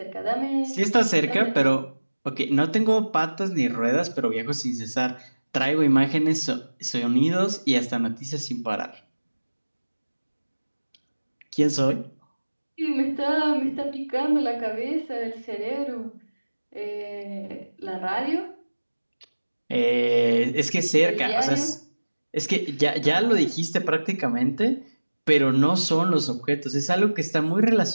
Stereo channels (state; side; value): inverted; both; correlation -1.00